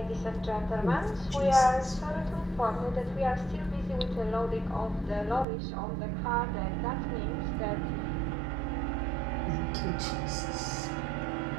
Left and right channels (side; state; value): left; drops out; at 5.5 s